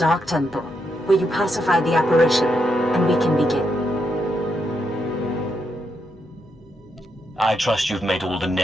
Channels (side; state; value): both; normal; correlation 0.81